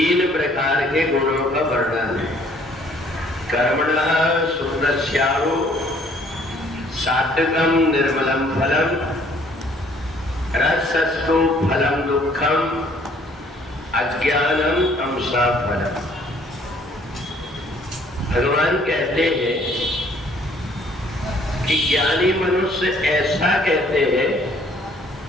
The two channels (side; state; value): both; normal; correlation 0.60